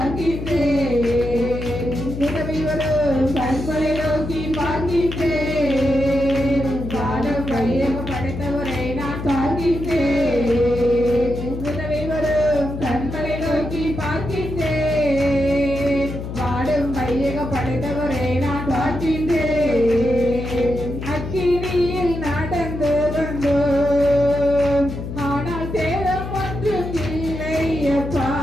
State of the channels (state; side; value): noise; left; hum, 7 dB below the sound